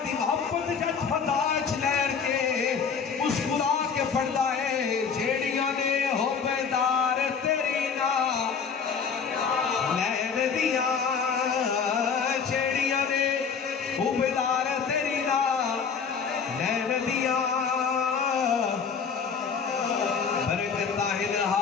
دی محبت جت فتاج لہر کے مسکرا کے پڑھدا ہے جیڑیاں نے حبدار تیری نال لہر دیاں جیڑیاں نے حبدار تیری نال لہر دیاں برکتاں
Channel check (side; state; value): right; quieter; 6.1 dB